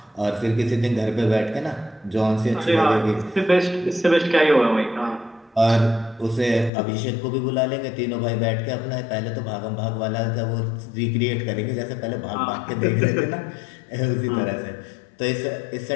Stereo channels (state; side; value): drops out; right; at 6.7 s